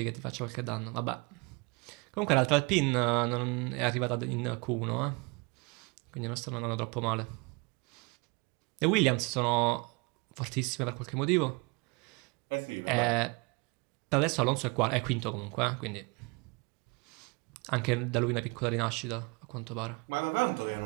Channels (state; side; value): quieter; left; 28.6 dB